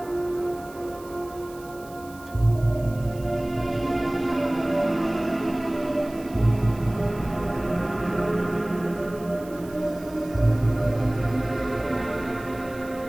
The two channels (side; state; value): right; noise; hiss, 22 dB below the sound